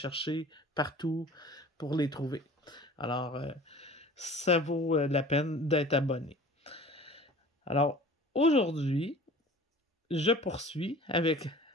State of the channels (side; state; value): both; normal; correlation 0.44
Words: partout pour les trouver. Alors, ça vaut la peine d'être abonné. Alors, aujourd'hui, je poursuis avec